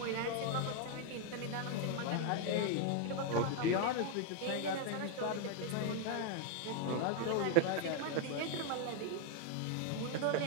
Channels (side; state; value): both; different; correlation 0.00